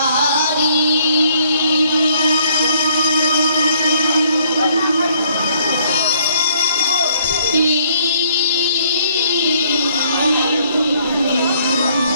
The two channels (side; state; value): both; inverted; correlation -0.65